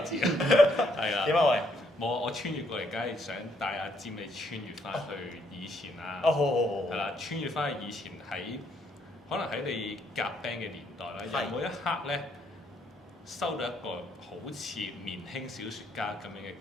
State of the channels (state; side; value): normal; both; correlation 0.71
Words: 字你知啊。係啊。點啊喂？冇啊！我穿越過嚟，梗係想帶阿占你穿越翻去以前啦。好。係啦，穿越翻去以前可能喺你夾 band 嘅年代啦，有冇一刻咧收到一個好似年輕小説家咁樣嘅